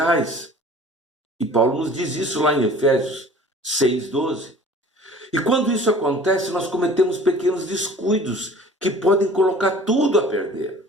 E Paulo nos diz isso lá em Efésios 6:12. E quando isso acontece, nós cometemos pequenos descuidos que podem colocar tudo a perder.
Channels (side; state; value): both; normal; correlation 0.47